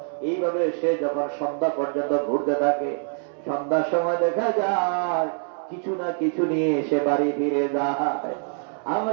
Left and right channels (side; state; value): left; silent; 56 dB below the other